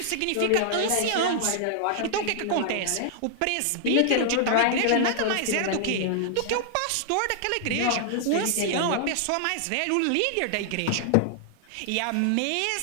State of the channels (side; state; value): both; different; correlation -0.01